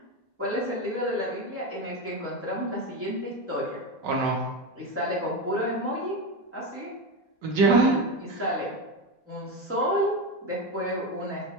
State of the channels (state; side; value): normal; both; correlation 0.17